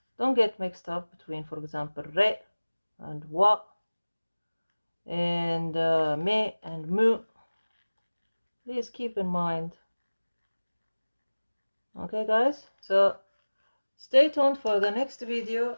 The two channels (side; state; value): both; inverted; correlation -1.00